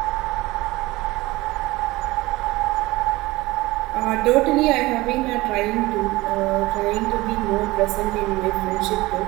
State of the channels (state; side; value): quieter; left; 20.2 dB